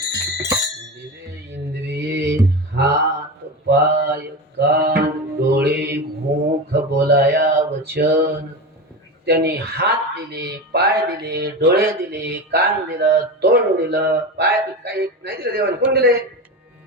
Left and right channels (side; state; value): both; normal; correlation 0.23